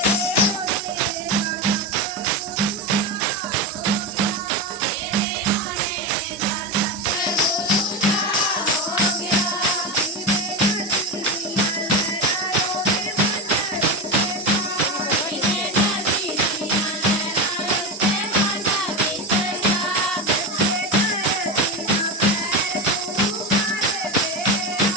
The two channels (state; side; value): normal; both; correlation 0.17